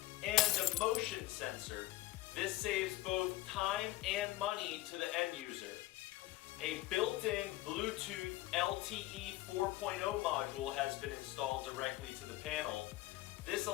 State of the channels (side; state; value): right; quieter; 17.6 dB